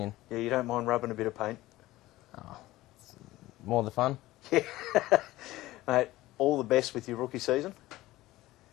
Yeah, you don't mind rubbing a bit of paint? Oh, more the fun. Yeah. Mate, all the best with your rookie season.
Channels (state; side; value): quieter; right; 17.2 dB